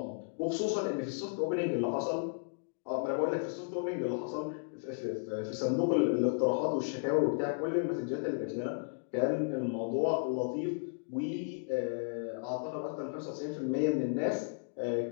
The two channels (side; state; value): right; silent; digital silence